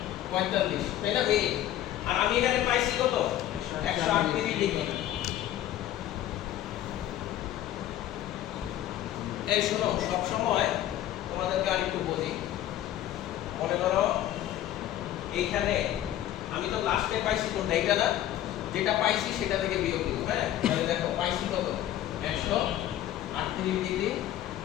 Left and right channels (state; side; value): quieter; right; 12.7 dB